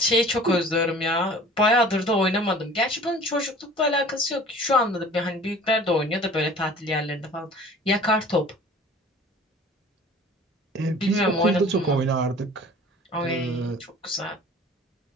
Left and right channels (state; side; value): normal; both; correlation 0.46